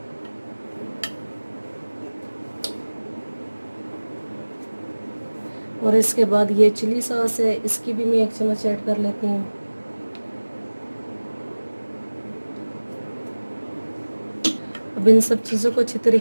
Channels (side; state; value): both; inverted; correlation -1.00